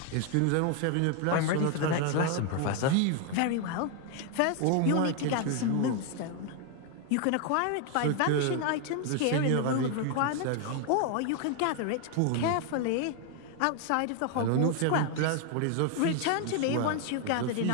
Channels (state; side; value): different; both; correlation 0.01